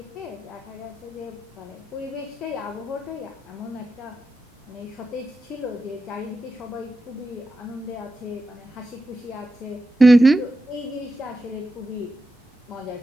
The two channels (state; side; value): normal; both; correlation 0.90